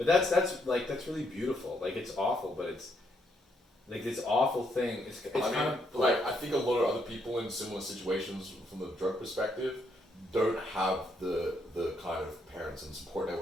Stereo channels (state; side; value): normal; both; correlation 0.75